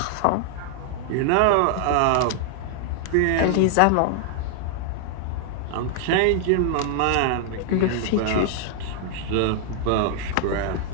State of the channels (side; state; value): both; different; correlation 0.00